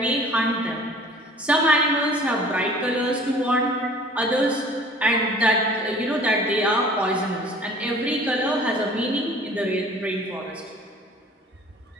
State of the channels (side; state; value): both; normal; correlation 0.49